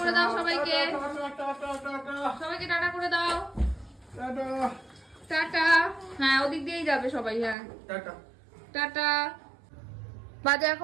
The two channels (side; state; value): left; drops out; at 7.6 s